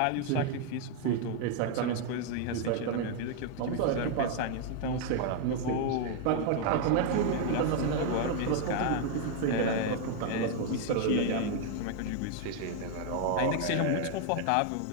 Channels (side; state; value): both; different; correlation 0.00